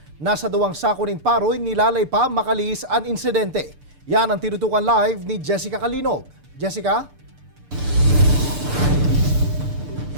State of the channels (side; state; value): left; late; 6.8 ms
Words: Nasa duwang sako nin paroy nilalay pa makalis ang insidente. Yan ang tinutukan live ni Jessica Calinog. Jessica?